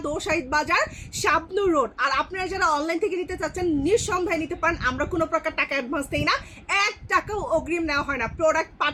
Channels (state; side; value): identical; both; correlation 1.00